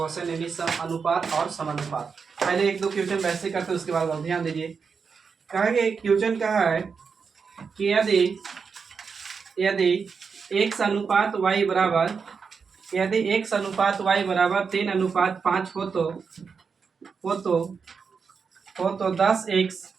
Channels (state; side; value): quieter; left; 5.6 dB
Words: यानी अनुपात और समानुपात। पहले एक दो क्वेश्चन वैसे करते हैं, उसके बाद आप ध्यान दीजिए। कहा कि क्वेश्चन कहा है कि यदि x अनुपात y बराबर 3:5 हो तो 10x